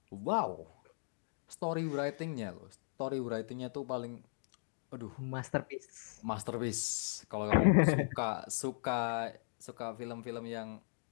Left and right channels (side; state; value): right; silent; digital silence